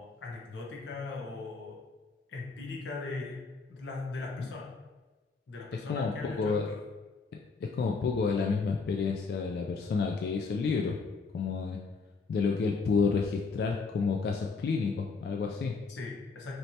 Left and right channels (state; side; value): quieter; right; 4.5 dB